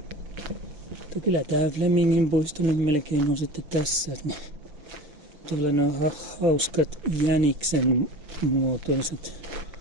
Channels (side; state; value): left; late; 6.8 ms